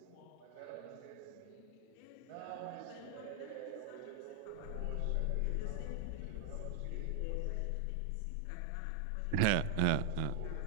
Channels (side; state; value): both; different; correlation 0.00